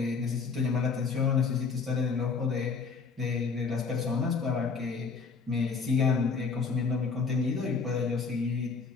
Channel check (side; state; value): right; quieter; 5.1 dB